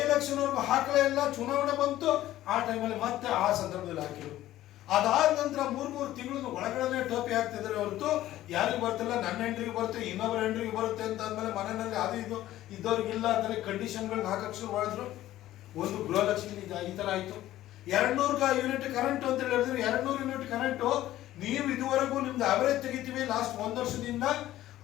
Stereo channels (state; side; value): quieter; right; 14.3 dB